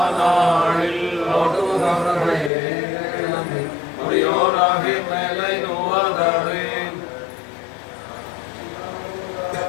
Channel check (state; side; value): drops out; right; at 2.5 s